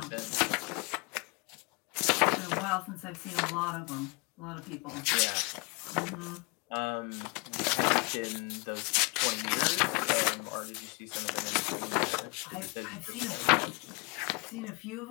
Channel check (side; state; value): right; quieter; 30.4 dB